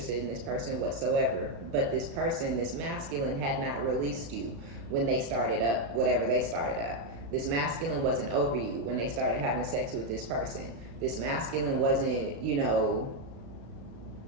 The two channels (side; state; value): left; late; 35 ms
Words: in this person whatsoever. But this person, this masculine, had not released you when they started up whatever they started up. This masculine wasn't over you when they started having sex with this person. This masculine wasn't,